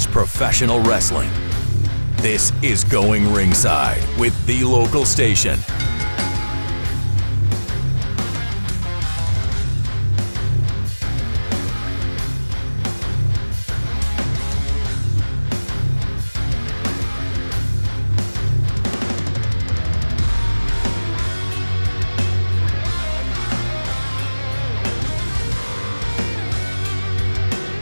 professional wrestling. This is Going Ringside with The Local Station.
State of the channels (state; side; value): inverted; both; correlation -1.00